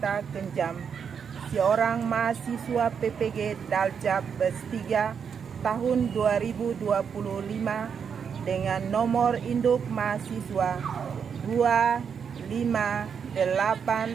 Kenjam, seorang mahasiswa PPG Daljab Bes3 tahun 2025 dengan nomor induk mahasiswa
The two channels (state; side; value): quieter; left; 6.9 dB